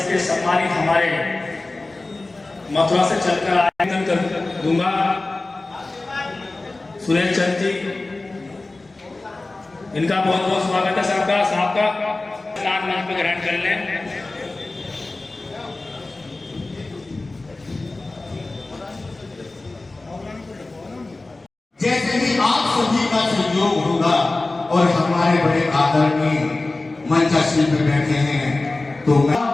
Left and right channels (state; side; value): quieter; right; 3.1 dB